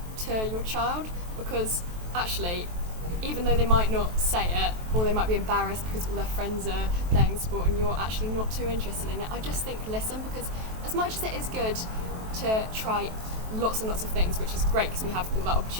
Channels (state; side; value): late; left; 23 ms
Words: to your child, because actually, even though they might not say it, or they might be embarrassed because all their friends are playing sport and you're actually not too interested in it, I just think listen, because as much as it is good to try lots and lots of things, which is great because we have all that